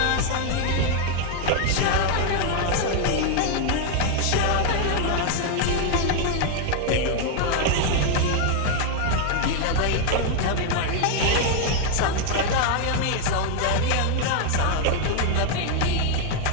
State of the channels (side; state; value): both; different; correlation 0.01